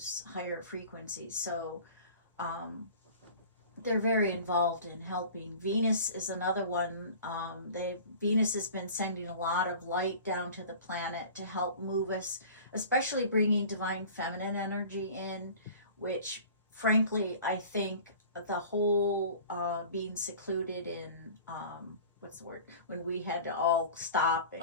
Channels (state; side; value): inverted; both; correlation -0.42